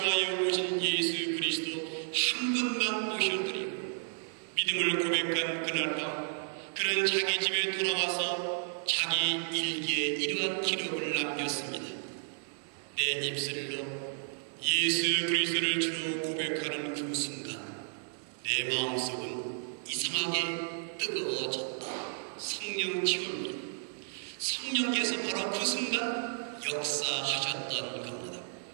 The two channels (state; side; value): silent; left; digital silence